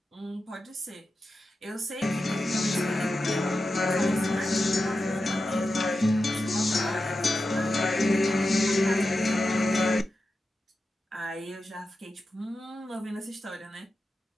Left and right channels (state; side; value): normal; both; correlation 0.91